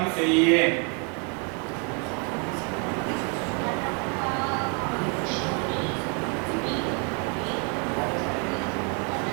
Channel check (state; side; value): quieter; left; 36.6 dB